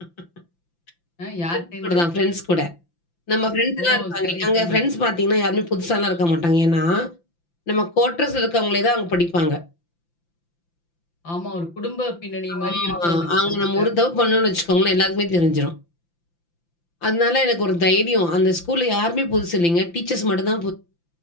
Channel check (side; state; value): right; late; 5.9 ms